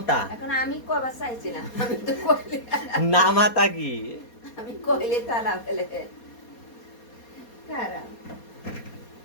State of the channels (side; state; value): right; late; 4.2 ms